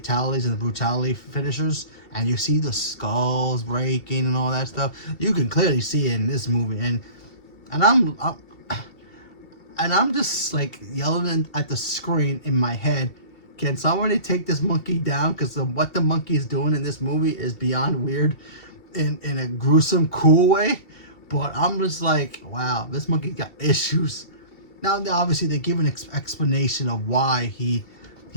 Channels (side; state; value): right; late; 2.7 ms